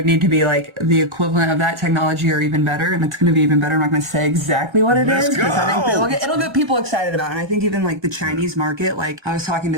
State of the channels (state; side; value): late; left; 1.4 ms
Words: need to be like the equivalent of that technology or even better. And it's going to be even better. I'm not going to say exactly what it is. It'll get people excited about it. And I think even like the Chinese market, like I was talking